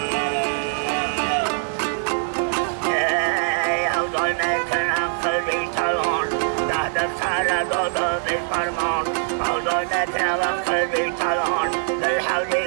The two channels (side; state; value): left; silent; digital silence